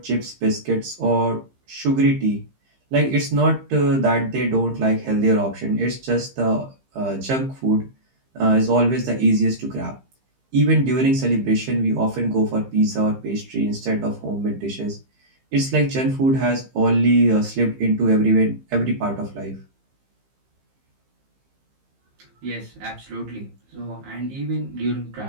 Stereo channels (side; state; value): left; late; 15 ms